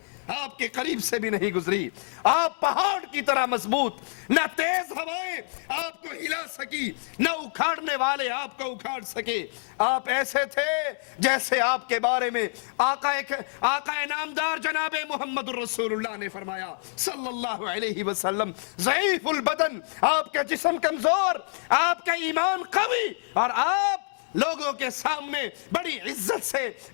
آپ کے قریب سے بھی نہیں گزری. آپ پہاڑ کی طرح مضبوط, نہ تیز ہوائیں آپ کو ہلا سکی نہ اکھاڑنے والے آپ کو اکھاڑ سکے. آپ ایسے تھے جیسے آپ کے بارے میں آقا نامدار جناب محمد الرسول اللہ نے فرمایا صلی اللہ علیہ وسلم ضعیف البدن, آپ کا جسم کمزور, آپ کا ایمان قوی اور آپ لوگوں کے سامنے بڑی عزت سے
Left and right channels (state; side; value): silent; right; digital silence